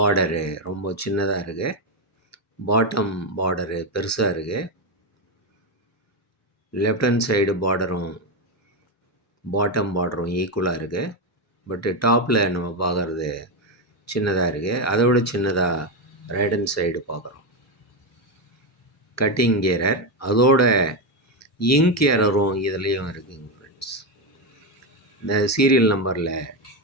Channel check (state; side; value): normal; both; correlation 0.09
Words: ரொம்ப சின்னதாக இருக்குது, பாட்டம் பார்டரு பெருசாக இருக்குது. லெஃப்ட் ஹேண்ட் சைடு பார்டரும் பாட்டம் பார்டரும் ஈக்குவலாக இருக்குது. பட்டு டாப்பில் நம்ம பார்க்குறது சின்னதாக இருக்குது. அதை விட சின்னதாக ரைட் ஹேண்ட் சைடு பார்க்குறோம். கட்டிங் எரர், அதோட இங்க் எரரும் இதுலேயும் இருக்குங்க ஃப்ரெண்ட்ஸ். இந்த சீரியல் நம்பரில்